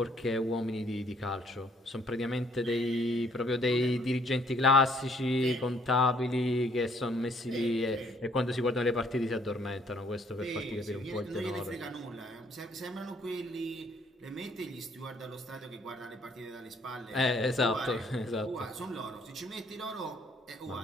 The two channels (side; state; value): both; normal; correlation 0.65